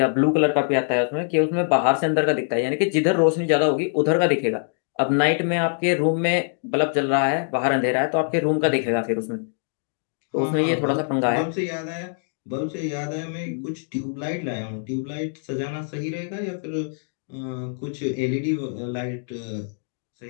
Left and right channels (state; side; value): silent; right; digital silence